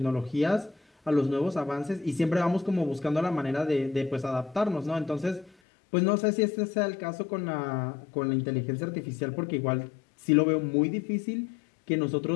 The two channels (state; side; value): drops out; right; at 5.5 s